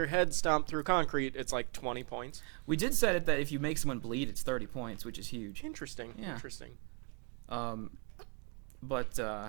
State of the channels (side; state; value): left; quieter; 37.7 dB